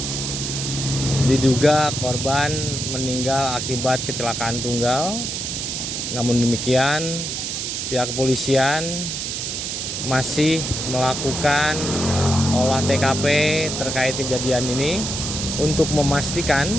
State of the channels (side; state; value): right; noise; hiss, 3 dB below the sound